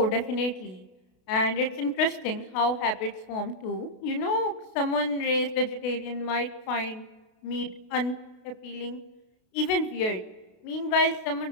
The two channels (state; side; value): late; right; 32 ms